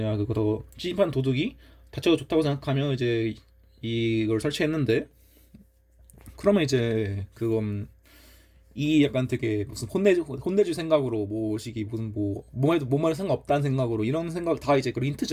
그거 더 침입한 도둑이 자체가 좋다고 생각하면 이제 이걸 설치했는데 그러면 이제 그건 이 약간 되게 무슨 혼내줄 생각으로 뭐식이 무슨 뭐말해도 상관없다는 생각으로 이런 생각 다 이제 그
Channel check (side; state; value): both; identical; correlation 1.00